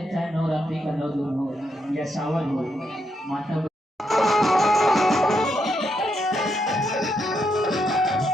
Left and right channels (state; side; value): normal; both; correlation 0.80